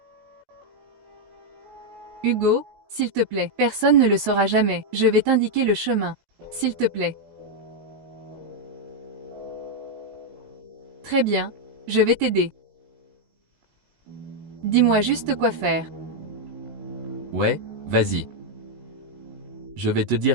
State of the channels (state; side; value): late; left; 17 ms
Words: Hugo, s'il te plaît. Personne ne le saura jamais. Je vais t'indiquer le chemin. S'il te plaît. Très bien. Je vais t'aider. Dis-moi juste quoi faire. Ouais, vas-y. Je vais te